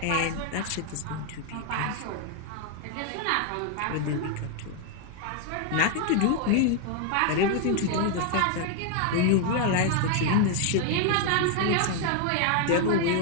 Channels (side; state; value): both; different; correlation 0.00